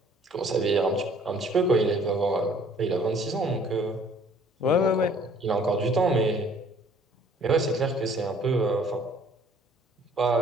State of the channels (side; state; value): both; normal; correlation 0.57